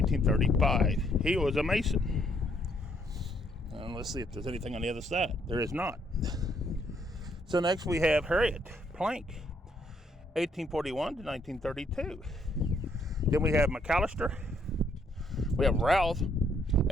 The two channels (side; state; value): both; normal; correlation 0.70